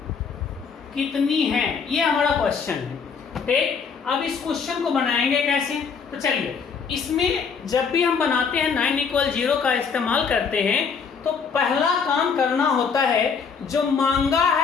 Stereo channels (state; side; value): quieter; right; 5.9 dB